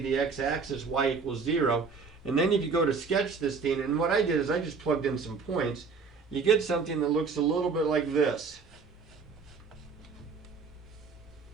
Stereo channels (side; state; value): left; quieter; 5.0 dB